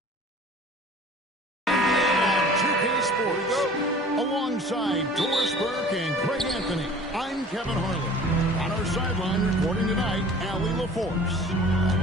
the 2K Sports. Alongside Doris Burke and Craig Anthony, I'm Kevin Harlan. On our sideline reporting tonight, Allie LaForce.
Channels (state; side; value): normal; both; correlation 0.46